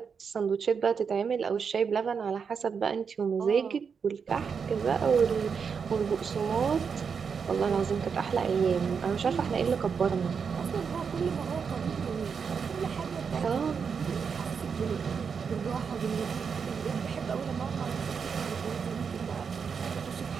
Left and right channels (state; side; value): quieter; left; 6.2 dB